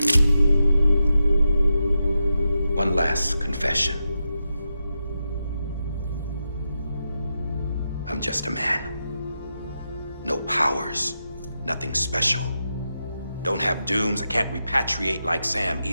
One last confession. I'm just a man. No powers, nothing special. Don't have dooms, I can't repatriate like Sam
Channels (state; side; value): inverted; both; correlation -0.88